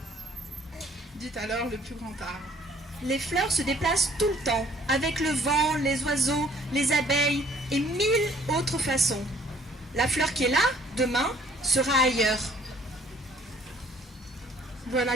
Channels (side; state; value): both; normal; correlation 0.59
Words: Dit alors le plus grand arbre. Les fleurs se déplacent tout le temps, avec le vent, les oiseaux, les abeilles et 1000 autres façons. La fleur qui est là, demain, sera ailleurs.